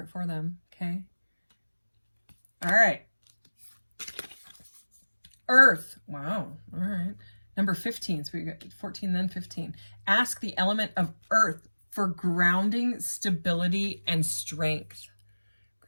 for them, okay? All right. Earth. Wow. All right. Number 15. So we got 14, then 15. Ask the element of earth for grounding, stability, and strength.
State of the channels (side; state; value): both; inverted; correlation -1.00